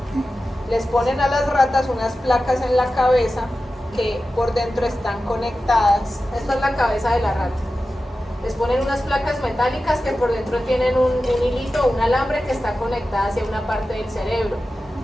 Les ponen a las ratas unas placas en la cabeza que por dentro están conectadas. Esta es la cabeza de la rata. Les ponen unas placas metálicas que por dentro tienen un hilito, un alambre que está conectada hacia una parte del cerebro.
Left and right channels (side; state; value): both; normal; correlation 0.93